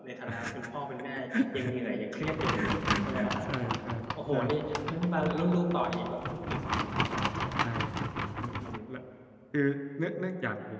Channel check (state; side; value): identical; both; correlation 1.00